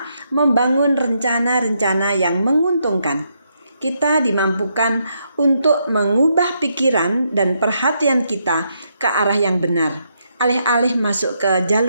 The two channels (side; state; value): both; inverted; correlation -0.78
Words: membangun rencana-rencana yang menguntungkan. Kita dimampukan untuk mengubah pikiran dan perhatian kita ke arah yang benar, alih-alih masuk ke